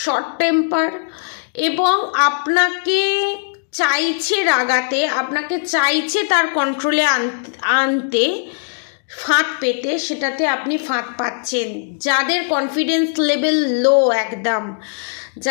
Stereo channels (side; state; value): right; silent; digital silence